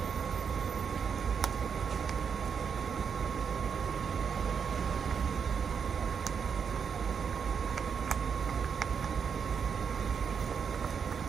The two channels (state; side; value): quieter; left; 6.6 dB